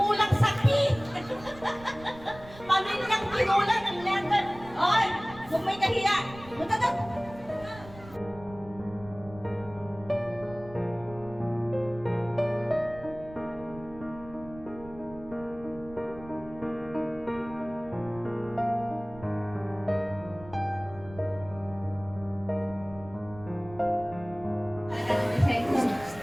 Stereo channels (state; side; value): noise; right; rumble, 18 dB below the sound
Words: sakit. Pamilyang kinulang ng letter. Oy, kung may kahiya, punta doon.